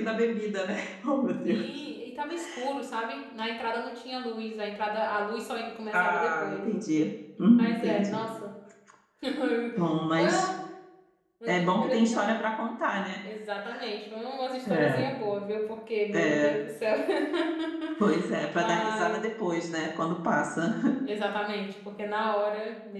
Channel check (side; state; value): both; identical; correlation 1.00